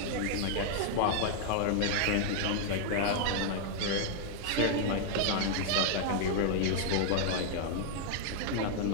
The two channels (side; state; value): both; different; correlation 0.00